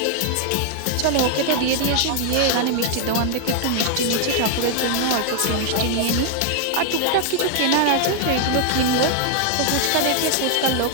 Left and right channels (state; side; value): different; both; correlation 0.00